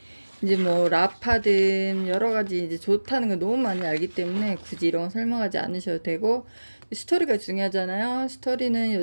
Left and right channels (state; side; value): inverted; both; correlation -1.00